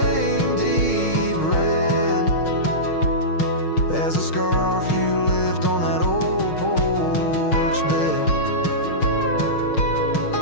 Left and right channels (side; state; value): right; late; 6.4 ms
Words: deep red as a scarf you left on that old porch bed.